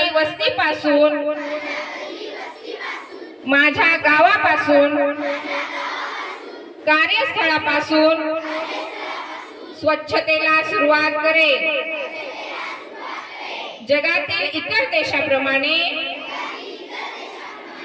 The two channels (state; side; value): identical; both; correlation 1.00